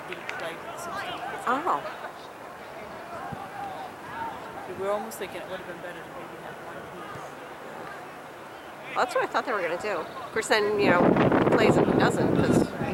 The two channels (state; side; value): identical; both; correlation 1.00